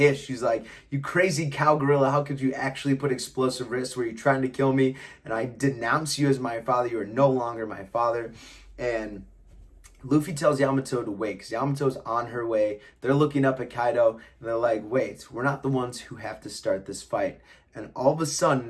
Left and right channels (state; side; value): identical; both; correlation 1.00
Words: She's like, "You crazy cow gorilla, how could you actually put explosive wrists? Were you trying to kill me? And I denounce you as my father. You are no longer my father." And Luffy tells Yamato to wait, because Yamato's on her way. They're looking up at Kaido, and they're like, "Wait, we're not the ones who have to start this fight." And all of a